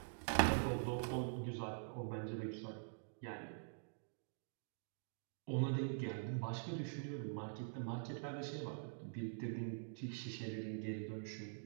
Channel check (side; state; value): left; silent; digital silence